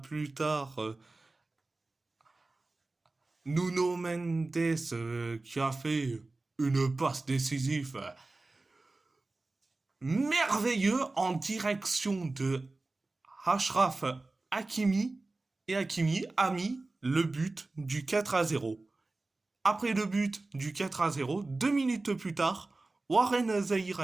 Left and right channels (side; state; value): left; quieter; 3.2 dB